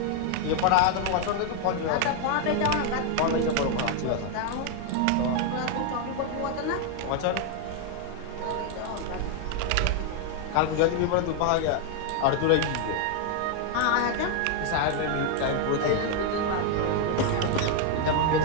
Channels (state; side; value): different; both; correlation 0.00